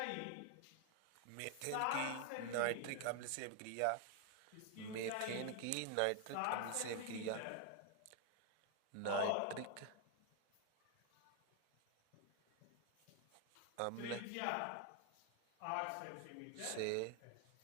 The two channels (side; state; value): both; different; correlation 0.01